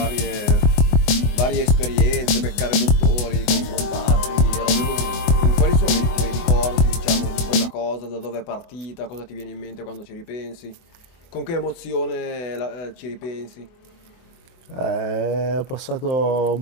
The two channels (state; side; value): late; right; 24 ms